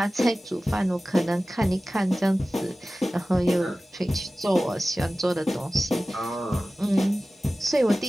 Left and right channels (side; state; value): both; normal; correlation 0.96